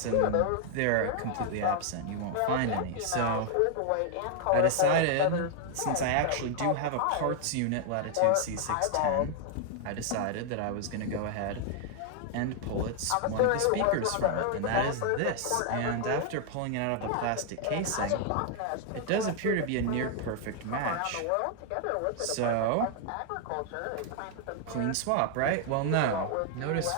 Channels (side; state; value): both; different; correlation 0.00